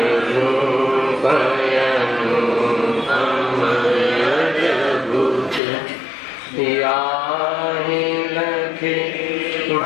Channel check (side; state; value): right; drops out; at 5.6 s